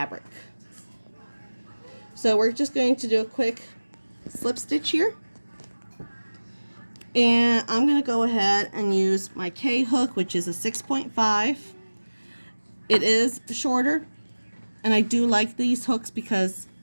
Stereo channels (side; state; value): both; inverted; correlation -1.00